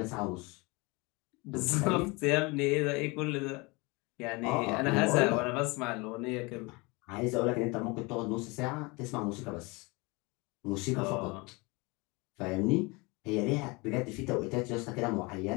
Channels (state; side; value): quieter; right; 26.4 dB